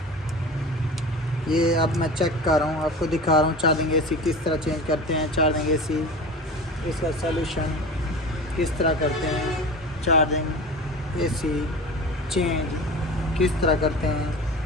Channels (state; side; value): normal; both; correlation 0.34